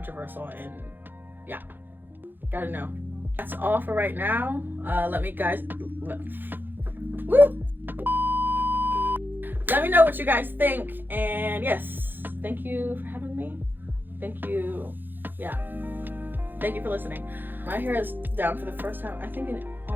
and yeah, gotta know. That's all for right now. Let me know what you guys think, and yes, thank you for having me. Thank you. Yeah. Thank you for listening. My hair is down for the first time, I think, in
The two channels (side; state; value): left; late; 0.093 ms